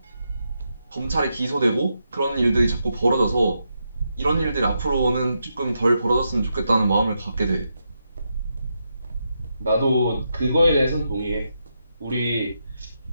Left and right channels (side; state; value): both; inverted; correlation -0.84